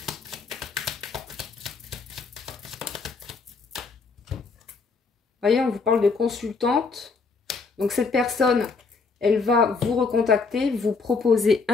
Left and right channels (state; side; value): quieter; right; 4.6 dB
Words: Voyez, on vous parle de consultante. Donc cette personne, elle va vous recontacter, vous proposer